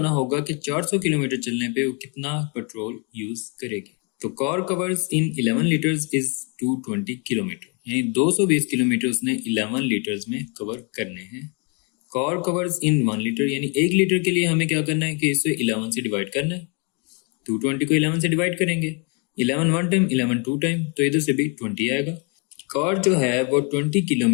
होगा कि 400 किलोमीटर चलने पे वो कितना पेट्रोल यूज करेगी। तो car covers in 11 litres is 220 kilometre, यानी 220 किलोमीटर उसने 11 लीटर्स में कवर करने हैं। कार कवर्स इन 1 लीटर, यानी 1 लीटर के लिए हमें क्या करना है कि इसे 11 से डिवाइड करना है। 220 को 11 से डिवाइड करेंगे, 11 1 टाइम, 11 2 टाइम, तो इधर से भी 20 आएगा। कार जो है वो 20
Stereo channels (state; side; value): quieter; right; 34.9 dB